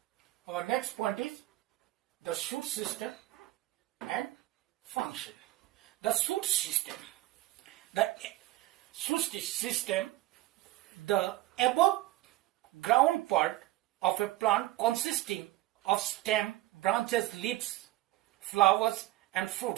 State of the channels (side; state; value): left; quieter; 16.7 dB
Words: Our next point is the shoot system and function. The shoot system. The above ground part of a plant consisting of stem, branches, leaves, flowers and